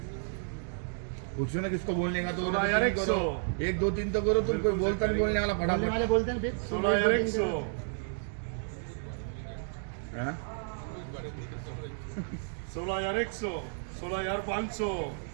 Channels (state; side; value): silent; left; digital silence